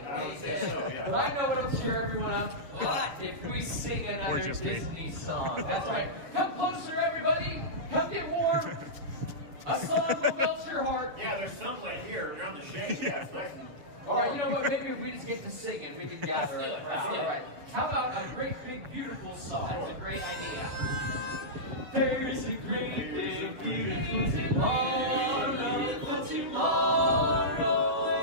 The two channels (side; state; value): left; late; 7.3 ms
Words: I would say so, yeah. But I know what I'm cheer everyone up. What? If we sing another just me. Disney song. That's right. Come closer, everybody. Come get warm. A song will melt your heart. Yeah, there's sunlight here. You're on the shade. Yeah, it's nice and... All right, you know what? Maybe if we just get to sing and we can gather around. All right. How about a great, big, beautiful song? That's a great idea. There's a great, big, beautiful tomorrow. For